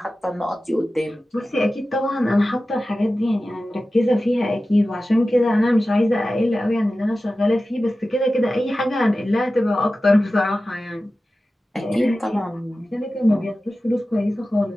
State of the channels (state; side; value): normal; both; correlation 0.95